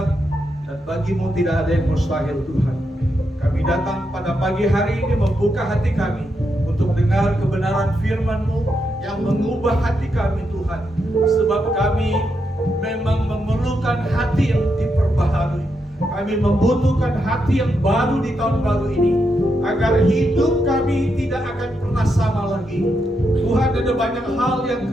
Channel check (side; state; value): both; normal; correlation 0.83